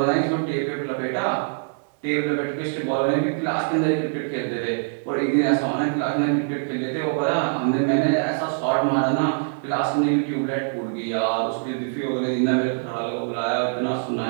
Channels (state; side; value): silent; left; digital silence